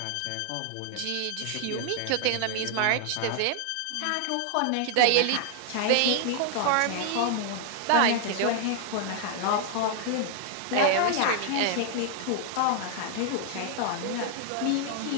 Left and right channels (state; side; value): different; both; correlation 0.00